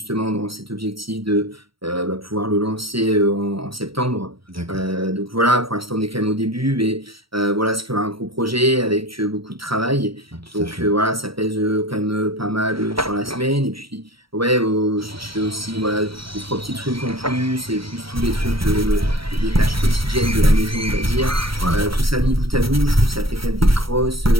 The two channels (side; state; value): left; late; 0.75 ms